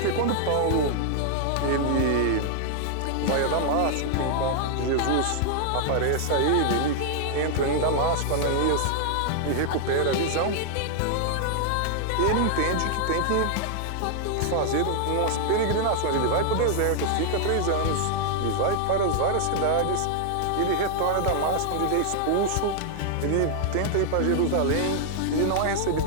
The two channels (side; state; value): both; different; correlation 0.00